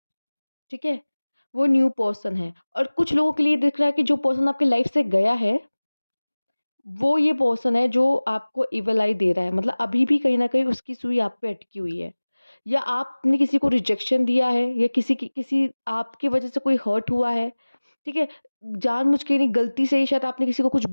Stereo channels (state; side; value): inverted; both; correlation -1.00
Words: ठीक है, वो न्यू पर्सन है। और कुछ लोगों के लिए दिख रहा है कि जो पर्सन आपकी लाइफ से गया है, वो ये पर्सन है जो आपको इविल आई दे रहा है। मतलब अभी भी कहीं न कहीं उसकी सुई आप पे अटकी हुई है। या आपने किसी को रिजेक्शन दिया है, या किसी आपकी वज़ह से कोई हर्ट हुआ है। ठीक है, जानबूझ के नहीं, गलती से ही शायद आपने किसी को कुछ